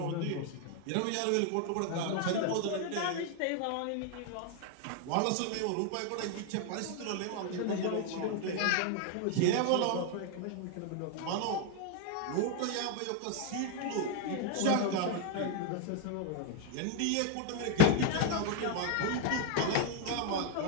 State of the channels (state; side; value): different; both; correlation 0.01